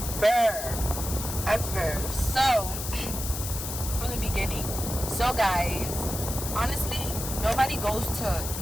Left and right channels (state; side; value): noise; left; hiss, 6 dB below the sound